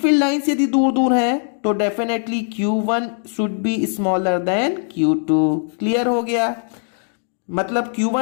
लाइंस यदि दूर दूर है तो definitely Q1 should be smaller than Q2। Clear हो गया? मतलब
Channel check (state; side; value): silent; right; 66 dB below the other